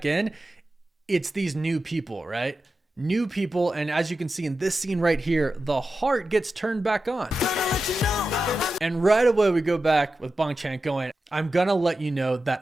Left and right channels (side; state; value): both; normal; correlation 0.92